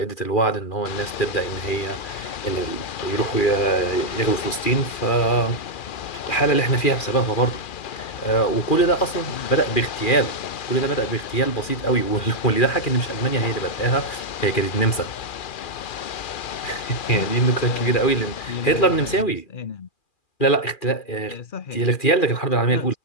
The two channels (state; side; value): late; right; 2.4 ms